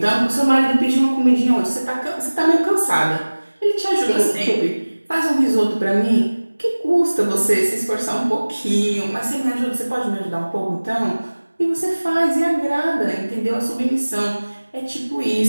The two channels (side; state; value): both; inverted; correlation -1.00